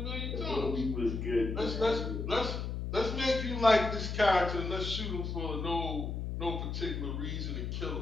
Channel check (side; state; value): left; noise; hum, 3 dB below the sound